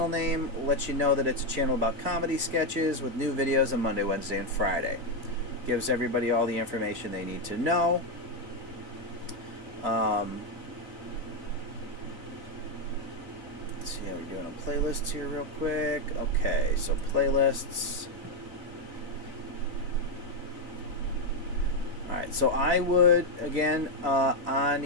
name, lets you know that it's a channel about comedy sketches with new videos on Monday, Wednesday, and Friday. Gives everybody all the information they need to know. Let's see how we're doing on playlists here real quick. Okay, so playlists. Alright, so I would, again,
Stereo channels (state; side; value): late; left; 3.6 ms